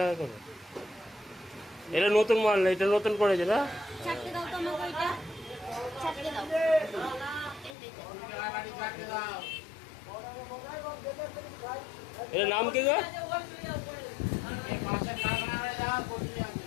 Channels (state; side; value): drops out; right; at 7.8 s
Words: করে। এটা নতুন মাল না, এটা নতুন করেছে না? এর নাম কি গো